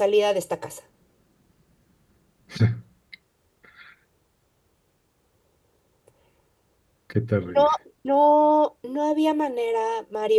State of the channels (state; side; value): identical; both; correlation 1.00